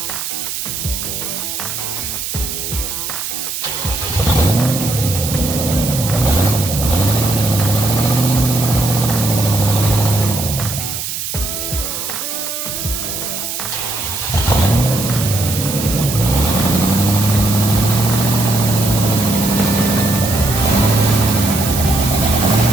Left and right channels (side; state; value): right; noise; hiss, 5 dB below the sound